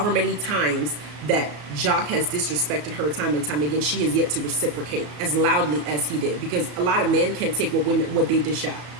many times that Jock has disrespected her time and time again, she has yet to reciprocate as loudly as he did. Because a lot of men can't take what they dish out.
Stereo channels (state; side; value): late; left; 34 ms